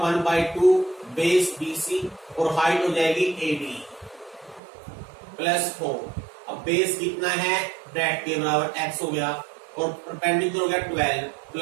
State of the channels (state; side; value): drops out; left; at 4.6 s